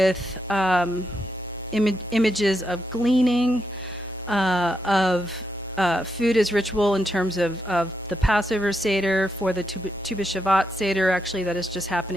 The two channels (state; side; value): normal; both; correlation 0.82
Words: images of gleaning, of food as ritual in terms of the Passover Seder, for the Tu B'Shavat Seder, actually, that is just